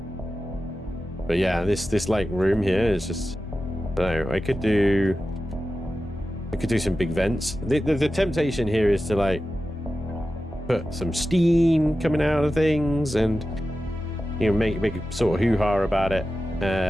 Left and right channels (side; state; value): both; normal; correlation 0.93